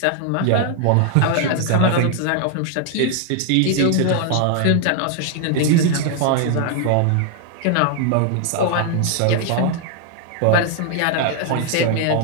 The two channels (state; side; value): different; both; correlation 0.00